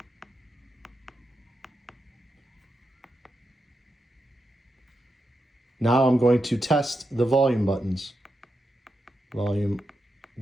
Now I'm going to test the volume buttons. Volume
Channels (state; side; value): normal; both; correlation 0.86